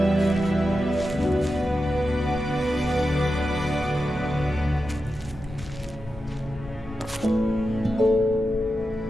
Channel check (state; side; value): normal; both; correlation 0.90